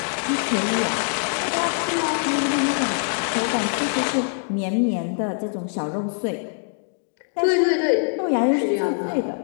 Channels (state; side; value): silent; right; 61 dB below the other